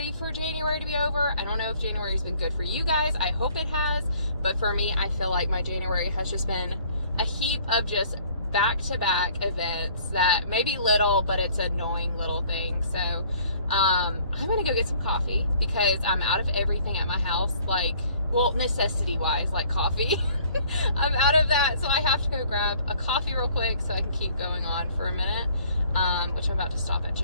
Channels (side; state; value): both; inverted; correlation -0.57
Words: for January to be over. I don't know if January's been good for you guys. I hope it has, but for me, I feel like my January has just been a heap of just back-to-back events that may be little, but it's annoying little things. So I'm gonna go get some coffee because I'm out of everything at my house, necessity wise, like coffee. I'm out of that, so I have to go grab a coffee real quick so I can keep going on for a minute, which I'm about to stop at